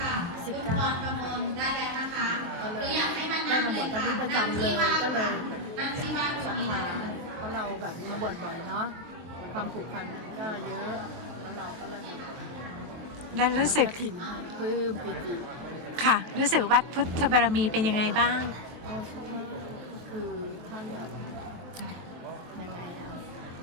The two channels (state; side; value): late; left; 23 ms